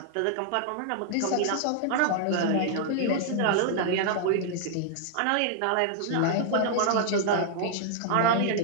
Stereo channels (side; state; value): both; different; correlation -0.01